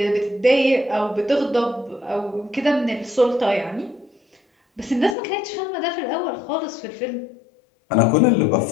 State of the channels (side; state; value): right; drops out; at 5.2 s